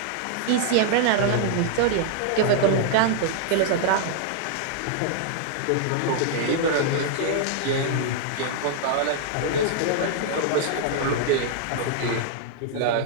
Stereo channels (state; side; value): different; both; correlation -0.01